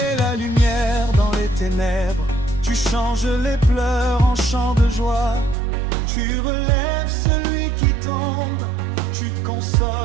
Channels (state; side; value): drops out; left; at 5.6 s